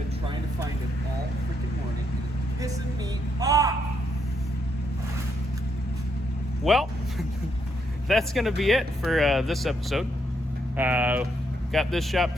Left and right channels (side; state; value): both; normal; correlation 0.77